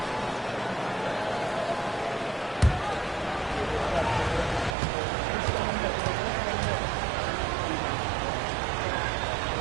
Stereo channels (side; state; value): left; drops out; at 4.8 s